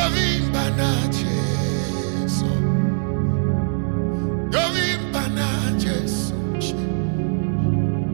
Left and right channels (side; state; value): left; silent; digital silence